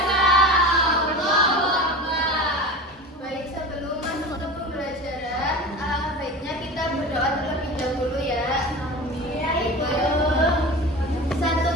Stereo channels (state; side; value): normal; both; correlation 0.32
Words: Allahu Akbar. Baik, sebelum masuk ke pembelajaran, alangkah baiknya kita berdoa terlebih dahulu ya.